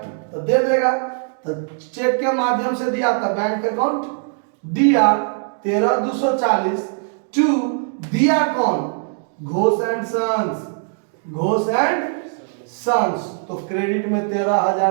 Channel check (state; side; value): silent; left; 61 dB below the other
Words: तो दे देगा, तो चेक के माध्यम से दिया था, बैंक अकाउंट दिया 13,240 टू दिया कौन? Ghosh and sons. तो क्रेडिट में